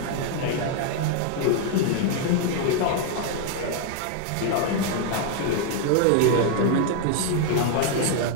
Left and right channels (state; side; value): different; both; correlation 0.00